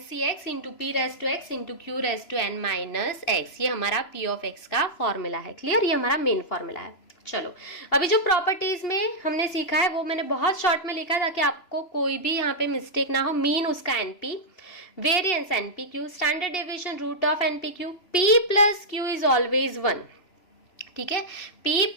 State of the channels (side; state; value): right; late; 3.0 ms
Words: into P raise to x into Q raise to n minus x, ये हमारा P ऑफ x का फॉर्मूला है। क्लियर? ये हमारा मेन फॉर्मूला है। चलो, अभी जो प्रॉपर्टीज में हमने सीखा है वो मैंने बहुत शॉर्ट में लिखा ताकि आपको कोई भी यहाँ पे मिस्टेक ना हो। मीन उसका NP, variance NPQ, standard deviation root of NPQ, P plus Q is always 1। ठीक है, P